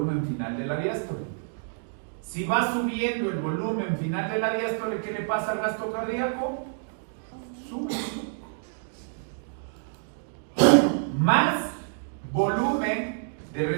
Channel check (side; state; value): left; silent; digital silence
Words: final de la diástole. Si va subiendo el volumen final de la diástole, ¿qué le pasa al gasto cardíaco? Sube. Más volumen de